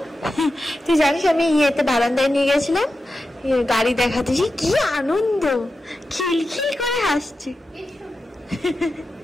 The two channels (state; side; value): normal; both; correlation 0.91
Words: তুই জানিস আমি ইয়েতে বারান্দায় নিয়ে গেছিলাম, গাড়ি দেখাতেছি, কি আনন্দ, খিলখিল করে হাসছি।